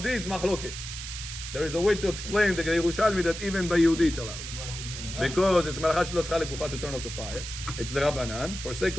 it's machloket. There is a way to explain the Yerushalmi that even by Yehudi it's allowed. Why with mezuzah? Because it's malachat shelo tzcha lekufa to turn off the fire. It's the Rabbanan. For sake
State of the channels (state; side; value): noise; right; hiss, 8 dB below the sound